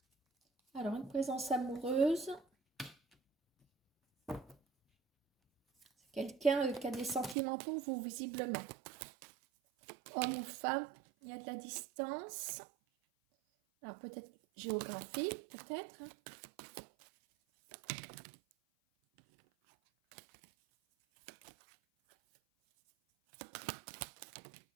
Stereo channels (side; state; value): left; drops out; at 7.4 s